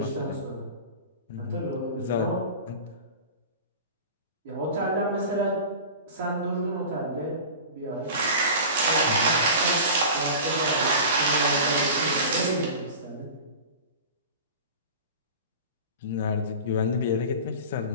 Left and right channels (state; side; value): inverted; both; correlation -0.34